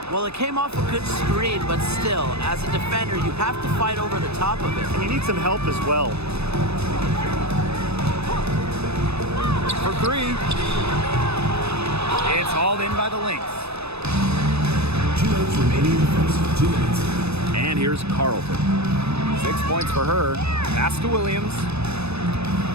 Well, it came off a good screen, but still, as a defender, you have to fight over the top of it. And you need some help as well. For 3. It's hauled in by the Lynx. 2 minutes remaining in the first. 2 minutes. And here's Carlton. 6 points for her. Pass to Williams.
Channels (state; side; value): late; left; 0.79 ms